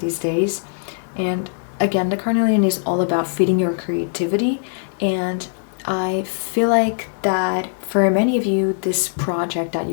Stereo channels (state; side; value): silent; right; 65 dB below the other